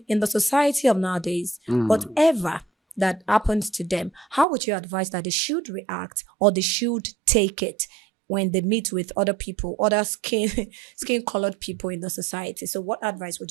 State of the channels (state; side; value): drops out; left; at 4.5 s